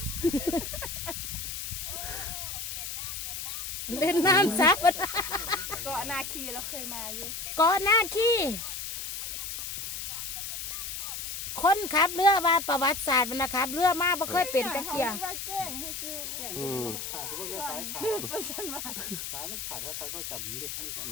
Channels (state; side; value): noise; left; hiss, 5 dB below the sound